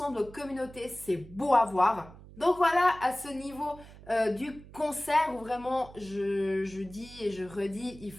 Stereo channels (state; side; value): noise; right; hum, 19 dB below the sound